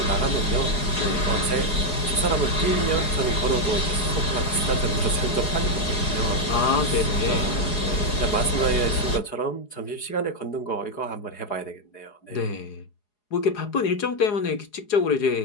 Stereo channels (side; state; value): right; late; 4.8 ms